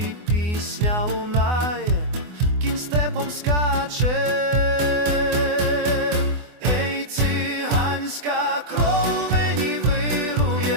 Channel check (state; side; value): late; left; 24 ms